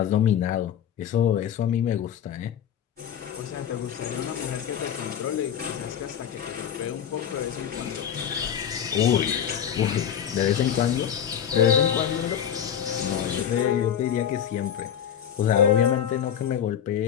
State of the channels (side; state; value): right; quieter; 9.1 dB